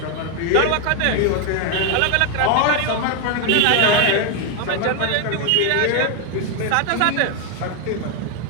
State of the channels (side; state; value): both; different; correlation 0.01